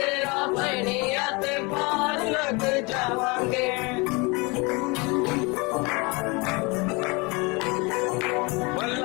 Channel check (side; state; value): right; quieter; 27.8 dB